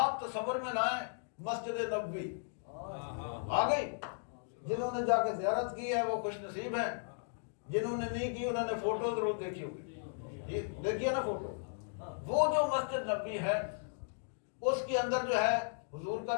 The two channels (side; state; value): right; silent; digital silence